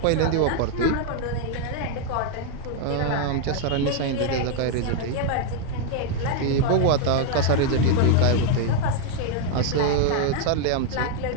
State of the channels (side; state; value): both; different; correlation 0.00